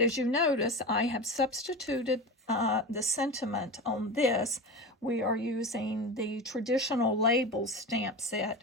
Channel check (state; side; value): normal; both; correlation 0.26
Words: as you notice, I have substituted the sentiment on this. We are using the traditional labels stamp